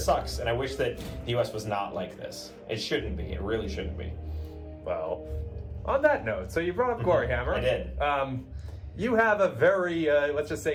And I wish that the U.S. was not like this. It shouldn't be. It really shouldn't be. Well, on that note, so you brought up Glory Hammer. I did. You have a very, let's just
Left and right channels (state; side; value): identical; both; correlation 1.00